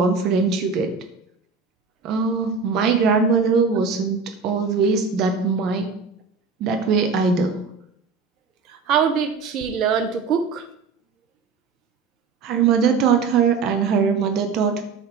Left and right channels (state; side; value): quieter; left; 5.1 dB